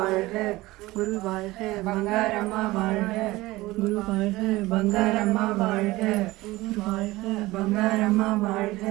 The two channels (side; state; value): left; quieter; 19.2 dB